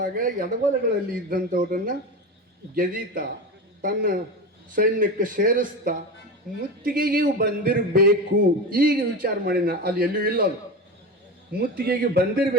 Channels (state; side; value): normal; both; correlation 0.24